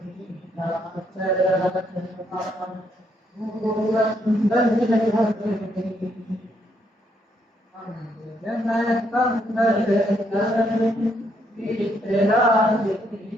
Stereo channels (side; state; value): both; normal; correlation 0.73